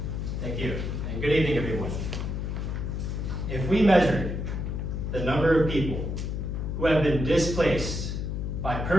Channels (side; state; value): left; noise; hum, 3 dB below the sound